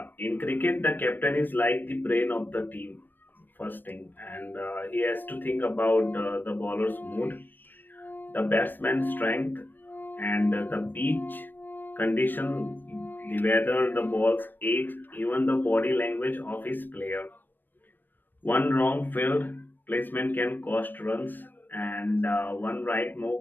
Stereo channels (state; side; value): late; right; 0.092 ms